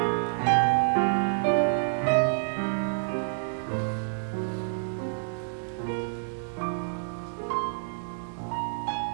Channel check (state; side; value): silent; left; 56 dB below the other